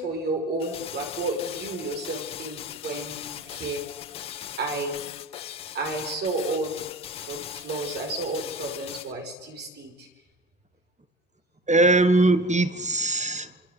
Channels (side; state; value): both; normal; correlation 0.37